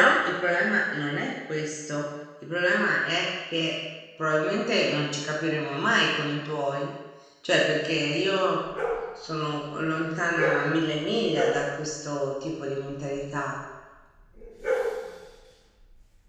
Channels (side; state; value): both; identical; correlation 1.00